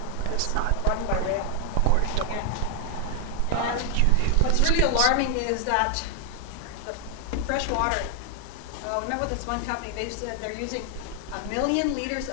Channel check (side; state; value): both; different; correlation 0.00